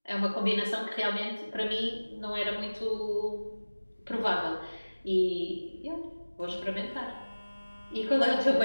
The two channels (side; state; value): both; inverted; correlation -1.00